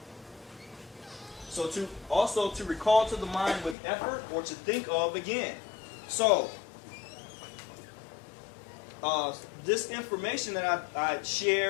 So to recall to the mind with effort, or to think of again. So this information that I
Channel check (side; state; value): right; drops out; at 3.8 s